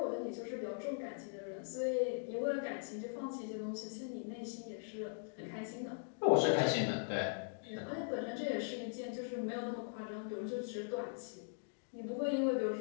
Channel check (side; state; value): right; silent; digital silence